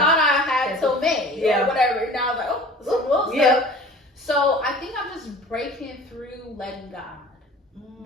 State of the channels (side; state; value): both; normal; correlation 0.43